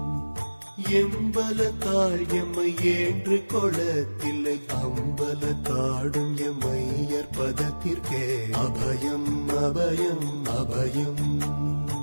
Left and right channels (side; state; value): both; inverted; correlation -1.00